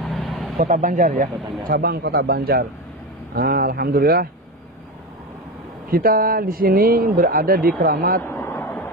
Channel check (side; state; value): both; normal; correlation 0.20